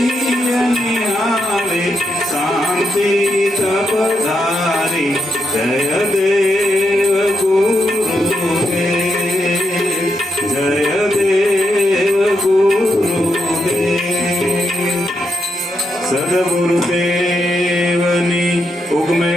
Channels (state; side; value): normal; both; correlation 0.82